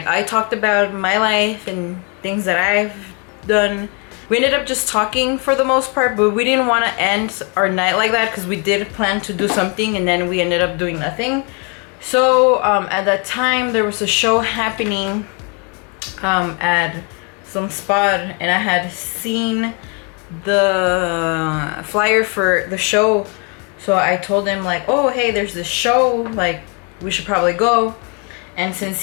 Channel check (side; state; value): right; quieter; 35.0 dB